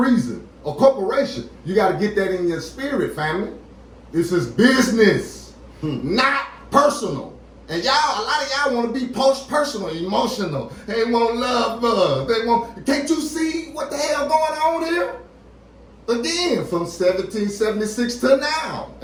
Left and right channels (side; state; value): both; identical; correlation 1.00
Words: A corporation, you got to get that in your spirit, family. This is business, not personal. And y'all, a lot of y'all want to be post-personal, emotional. They want love. They want. Can't you see what the hell going on here? Again, from 1776 to now.